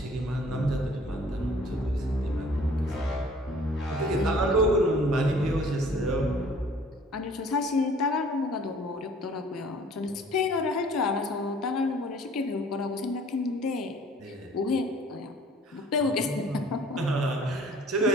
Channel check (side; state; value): both; normal; correlation 0.53